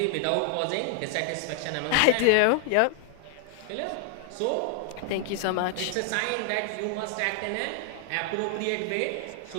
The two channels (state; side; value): different; both; correlation 0.00